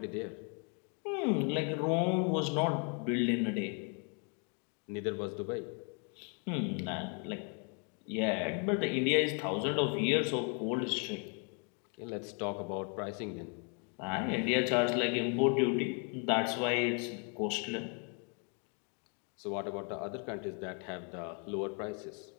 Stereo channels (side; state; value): right; quieter; 38.4 dB